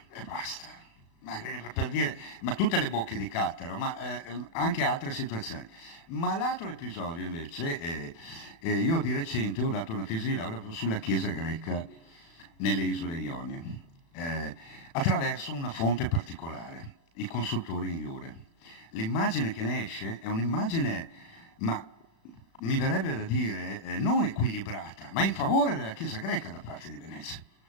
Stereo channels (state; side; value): late; right; 36 ms